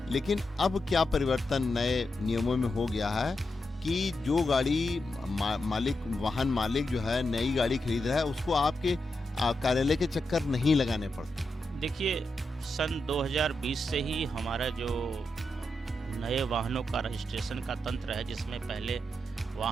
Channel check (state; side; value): normal; both; correlation 0.86